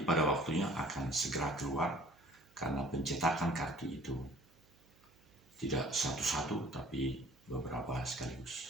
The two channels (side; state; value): right; noise; hum, 30 dB below the sound